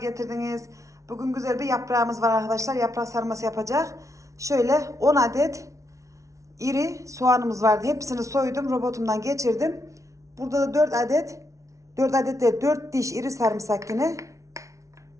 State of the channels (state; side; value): late; left; 0.15 ms